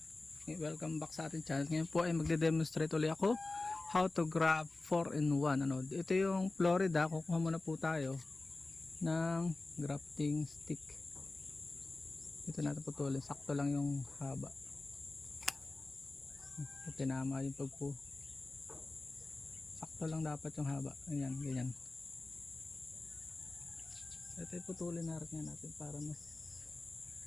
Welcome back sa ating channel. Ngayon po ay magde-demonstrate ulit ako how to grab 4-in-1. Ito yung Florida. Kukuha muna po tayo ng grafting stick. Ito natin putulin. Sakto lang yung haba. Tinama yung pagpo. Sakto lang dapat yung haba. Ayan, ganyan. Ito putulin natin para mas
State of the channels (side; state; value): right; quieter; 3.2 dB